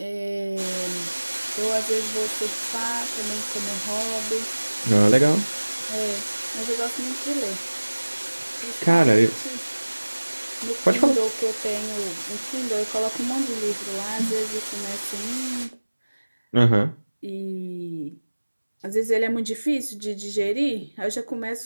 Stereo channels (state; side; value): inverted; both; correlation -1.00